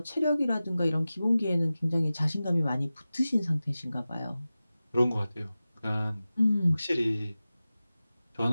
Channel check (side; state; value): both; inverted; correlation -0.96